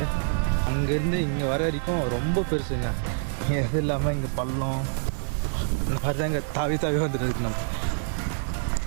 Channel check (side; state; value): left; silent; 61 dB below the other